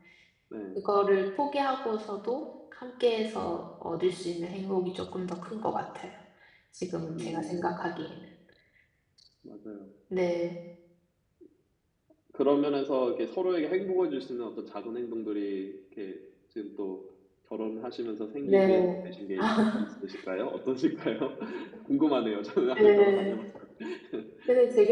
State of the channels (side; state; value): both; identical; correlation 1.00